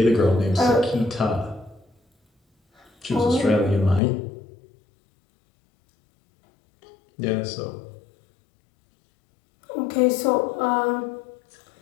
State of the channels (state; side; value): drops out; right; at 4.0 s